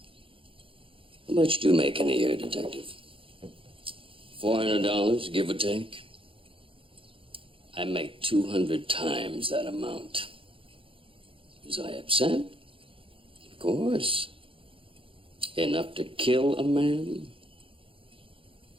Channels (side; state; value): left; late; 0.26 ms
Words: How much do you make in a year, Detective? $400, give or take? I make 200 times that amount. Was I upset? Of course. Enough to kill a man?